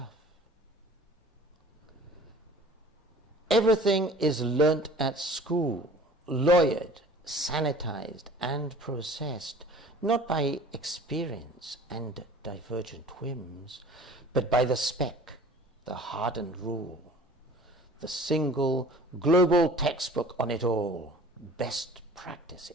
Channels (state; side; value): normal; both; correlation 0.47